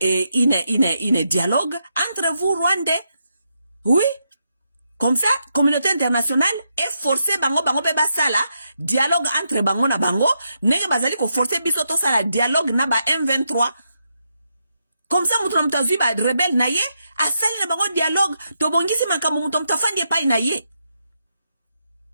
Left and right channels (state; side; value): inverted; both; correlation -0.82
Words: une dialogue entre vous Rwandais. Oui. Comme ça, communauté internationale est forcée bango pe basala dialogue entre bango na bango, nenge bazali ko forcer biso to sala dialogue na ba M23. Comme ça mutu mtazui ba rebelle na ye, asali na bango dialogue, to bongisi makambo mutu mtafandi pa na ye.